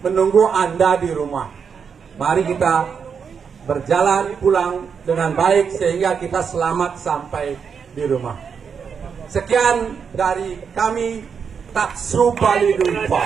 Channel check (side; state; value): left; quieter; 6.5 dB